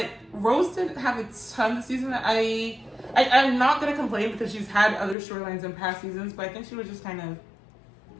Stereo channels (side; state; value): right; drops out; at 5.2 s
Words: Rose didn't have a ton this season. I'm not gonna complain, because she's had other storylines in past seasons, but I think she was just kind of,